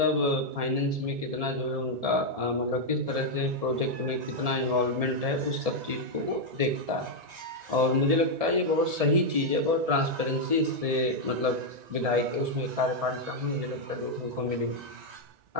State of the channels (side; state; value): left; late; 1.7 ms